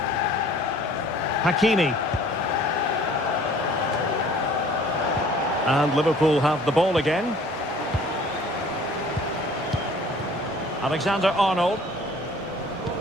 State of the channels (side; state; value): both; normal; correlation 0.52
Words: Hakimi. And Liverpool have the ball again. Alexander-Arnold.